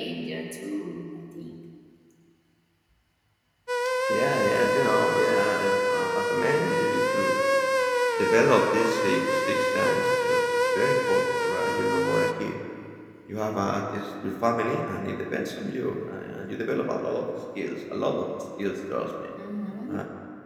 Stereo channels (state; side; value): identical; both; correlation 1.00